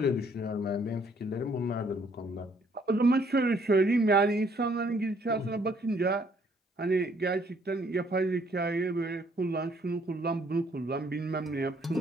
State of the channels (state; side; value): normal; both; correlation 0.65